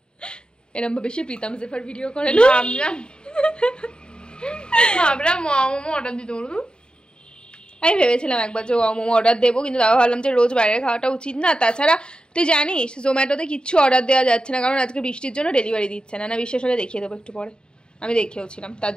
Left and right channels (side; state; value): right; late; 0.049 ms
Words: এরকম ভাবে সে প্রীতম জেফার ভিডিও করে না ভাবলাম মোমো অর্ডার দিতে বলবো আমি ভেবেছিলাম একবার যে মোমো অর্ডার দেবো কিন্তু তাও ভাবলাম যে রোজ বাইরে খাওয়াটা উচিত না তাছাড়া তুই জানিস জোম্যাটোতে কিচ্ছু অর্ডার দেওয়া যাচ্ছে না কারণ আজকে বৃষ্টির জন্য ডেলিভারি দিচ্ছে না বিশ্বাস হলে দেখিয়ে দেবো একটু পরে আমি দেখেওছিলাম তার